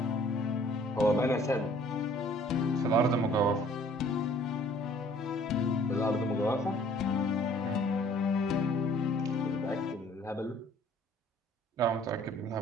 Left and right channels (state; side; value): normal; both; correlation 0.56